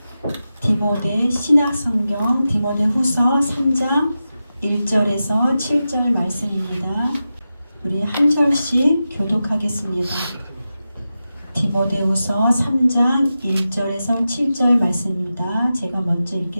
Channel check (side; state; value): both; inverted; correlation -0.92